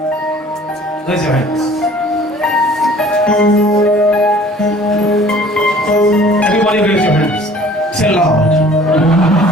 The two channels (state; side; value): normal; both; correlation 0.51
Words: Raise your hands. Everybody raise your hands. Say, Lord.